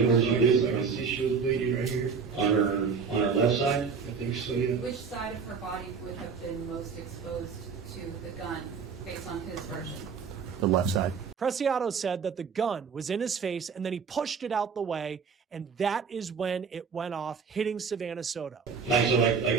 I can see she was bleeding right here. On her left side? I think so, yeah. Which side of her body would have been most exposed to the gun, based on his version? The left side. Preciado said that the gun was in his face and then he pushed it out the way, and that is when it went off, hitting Savanah Soto. You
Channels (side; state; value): left; quieter; 5.8 dB